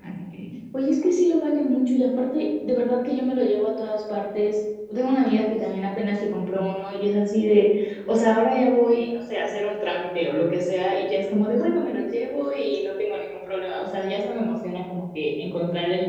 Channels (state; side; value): identical; both; correlation 1.00